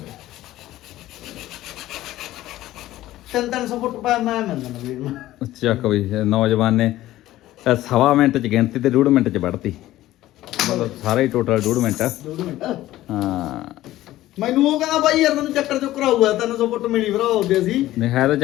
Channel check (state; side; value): quieter; right; 15.2 dB